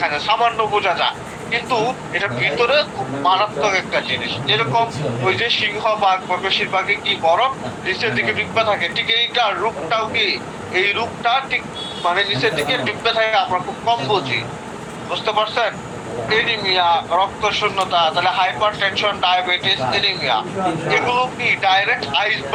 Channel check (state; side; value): identical; both; correlation 1.00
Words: যায়, সামান্য বোঝা যায়, কিন্তু এটা ভিতরে খুব মারাত্মক একটা জিনিস। যেরকম ওই যে সিংহবাগ বা বেশিরভাগই কি বরফ নিচের দিকে ডুববে থাকে, ঠিক এইটা রূপটাও কি এই রূপটা ঠিক মানে নিচের দিকে ডুববে থাকে, আমরা খুব কম বুঝি। বুঝতে পারছেন? এনিমিয়া, রক্ত শূন্যতা, তাহলে হাইপার টেনশন, ডায়াবেটিস, এনিমিয়া, এগুলো কি ডাইরেক্ট